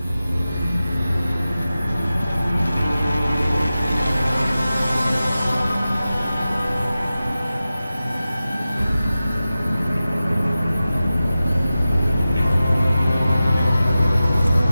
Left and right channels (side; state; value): both; inverted; correlation -0.94